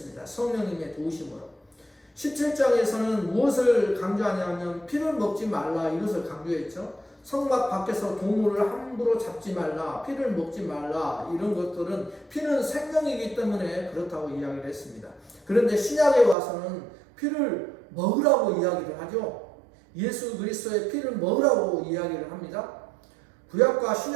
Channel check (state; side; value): drops out; left; at 16.4 s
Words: 성령님의 도우심으로. 17장에서는 무엇을 강조하냐면 피를 먹지 말라, 이것을 강조했죠. 성막 밖에서 동물을 함부로 잡지 말라, 피를 먹지 말라, 이런 것들은 피는 생명이기 때문에 그렇다고 이야기를 했습니다. 그런데 신약에 와서는 피를 먹으라고 이야기를 하죠. 예수 그리스도의 피를 먹으라고 이야기를 합니다. 구약과